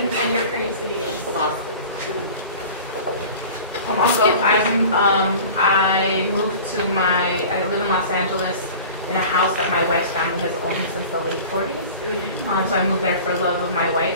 your current city is? Boston. I moved to I live in Los Angeles in a house that my wife's family has owned since the late 40s. So I moved there for love of my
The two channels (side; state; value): both; inverted; correlation -0.40